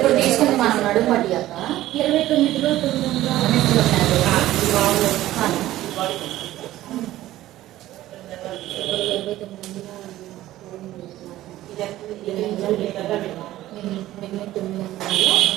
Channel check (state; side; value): quieter; left; 14.9 dB